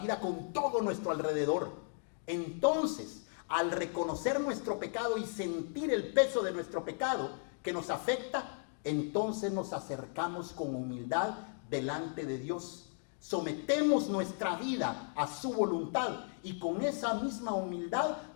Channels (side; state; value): right; silent; 54 dB below the other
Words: con todo nuestro alrededor. Entonces, al reconocer nuestro pecado y sentir el peso de nuestro pecado que nos afecta, entonces nos acercamos con humildad delante de Dios. Sometemos nuestra vida a su voluntad y con esa misma humildad